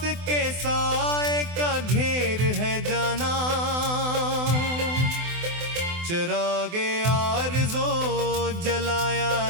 के साए का घेर है जाना। चिरागे आरज़ो जलाया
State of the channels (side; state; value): left; late; 24 ms